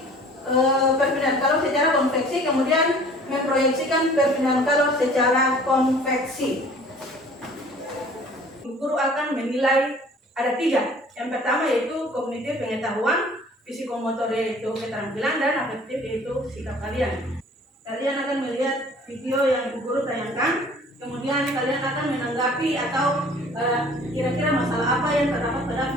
perpindahan kalor secara konveksi, kemudian memproyeksikan perpindahan kalor secara konveksi. Guru akan menilai ada 3. Yang pertama yaitu kognitif pengetahuan, psikomotor yaitu keterampilan, dan afektif yaitu sikap kalian. Kalian akan melihat video yang Ibu Guru tayangkan, kemudian kalian akan menanggapi atau kira-kira masalah apa yang terdapat pada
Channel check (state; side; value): normal; both; correlation 0.50